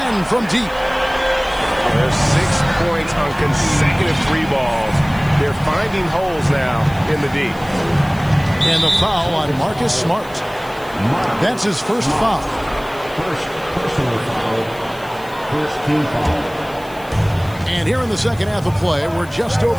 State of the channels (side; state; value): left; noise; hiss, 23 dB below the sound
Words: from deep. There's 6 points on consecutive 3 balls. They're finding holes now in the D. And the foul on Marcus Smart. That's his first foul. First personal foul. First team foul. And here in the second half of play, we're just